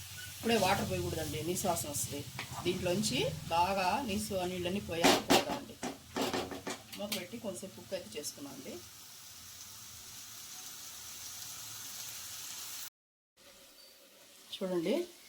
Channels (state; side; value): identical; both; correlation 1.00